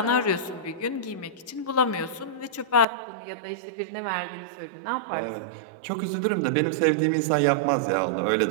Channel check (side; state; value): left; drops out; at 2.9 s